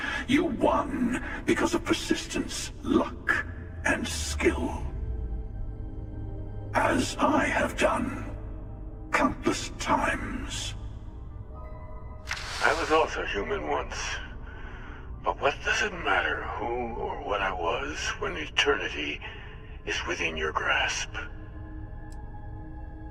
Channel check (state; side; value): identical; both; correlation 1.00